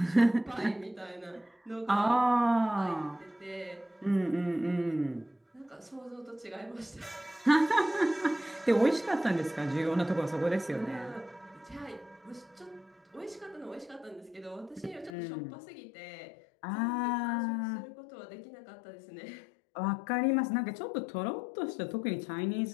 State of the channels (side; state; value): right; drops out; at 15.2 s